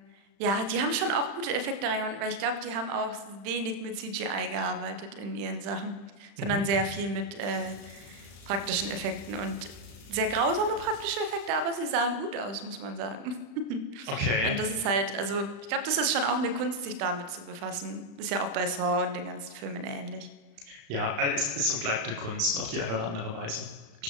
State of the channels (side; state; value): left; late; 35 ms